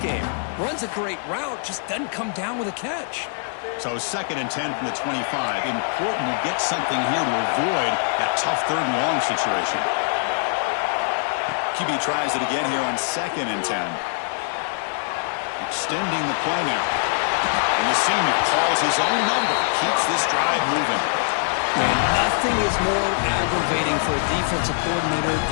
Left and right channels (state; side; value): silent; right; digital silence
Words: Runs a great route, just doesn't come down with a catch. So 2nd and 10 from the 25. Important to get something here to avoid that tough 3rd and long situation. QB tries it again here on 2nd and 10. Extending the play now. And the senior calls his own number. Keeps this drive moving. Man, nothing is more aggravating for a defensive coordinator